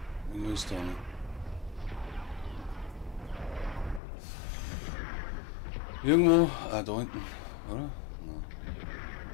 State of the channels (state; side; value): drops out; right; at 4.0 s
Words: Wo ist da? Irgendwo, da hinten, oder? Nein.